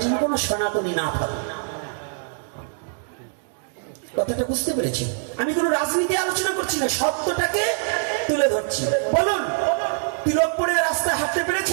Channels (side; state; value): left; silent; 63 dB below the other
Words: যেন কোনো সনাতনী না থাকে। কথাটা বুঝতে পেরেছি? আমি কোনো রাজনীতি আলোচনা করছি না, সত্যটাকে তুলে ধরছি। বলুন, তিলক পরে রাস্তায় হাঁটতে